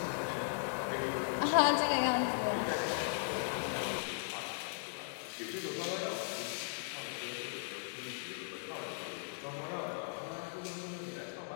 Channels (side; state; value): right; silent; digital silence